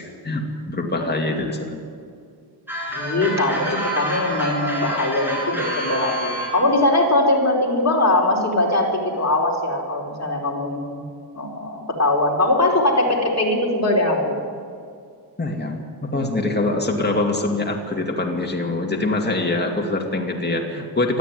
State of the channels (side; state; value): both; normal; correlation -0.11